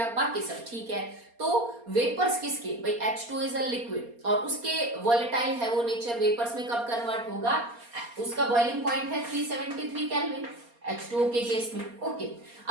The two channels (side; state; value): left; late; 4.3 ms